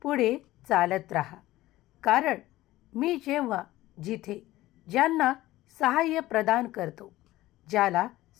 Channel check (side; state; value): right; quieter; 16.6 dB